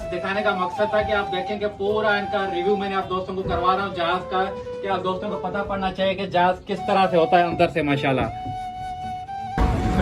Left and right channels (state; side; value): identical; both; correlation 1.00